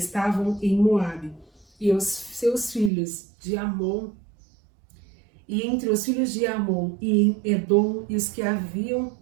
em Moabe e os seus filhos de Amon, e entre os filhos de Amon e em Edom, e os que havia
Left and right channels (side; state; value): left; drops out; at 2.9 s